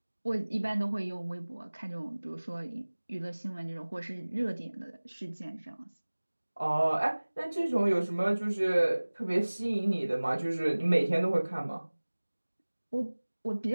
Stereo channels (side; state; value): both; inverted; correlation -1.00